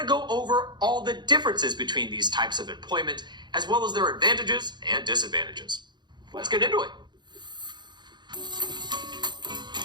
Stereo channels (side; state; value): left; late; 0.21 ms